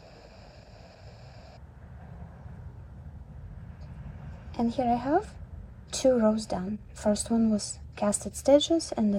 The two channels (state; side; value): identical; both; correlation 1.00